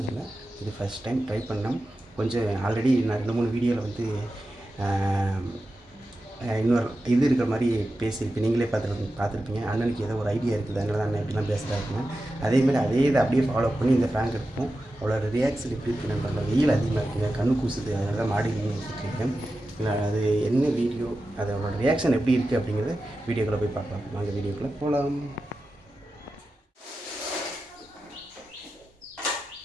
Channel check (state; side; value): normal; both; correlation 0.92